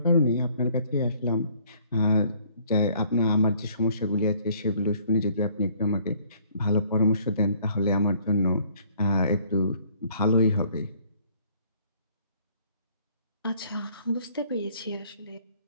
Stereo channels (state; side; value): inverted; both; correlation -0.61